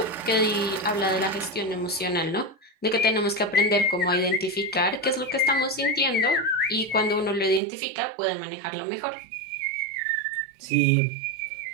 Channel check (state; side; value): drops out; left; at 7.6 s